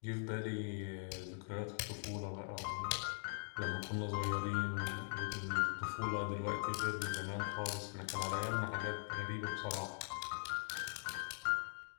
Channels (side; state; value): right; silent; digital silence